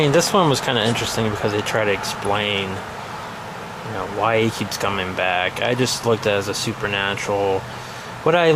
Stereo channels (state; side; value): identical; both; correlation 1.00